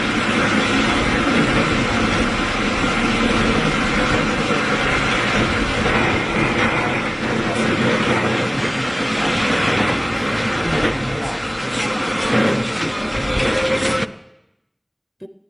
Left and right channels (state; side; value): identical; both; correlation 1.00